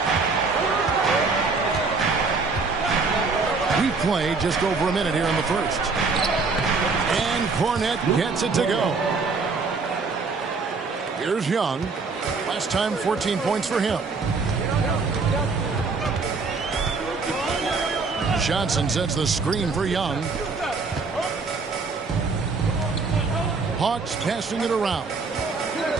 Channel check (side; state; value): left; quieter; 4.3 dB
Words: We played just over a minute here in the first. And Cornette gets it to go. Here's Young. Last time, 14 points for him. Johnson sets the screen for Young. Hawks passing it around.